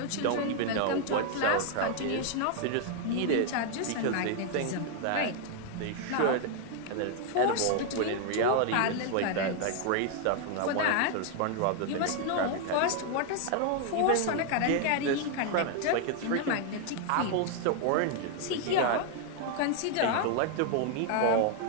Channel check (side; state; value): both; different; correlation 0.00